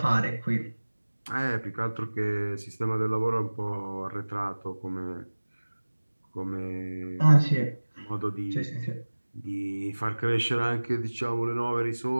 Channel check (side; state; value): both; inverted; correlation -1.00